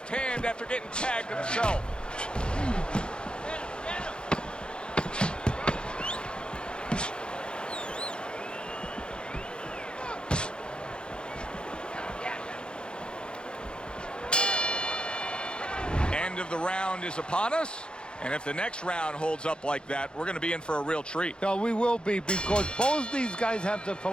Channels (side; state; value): right; late; 0.051 ms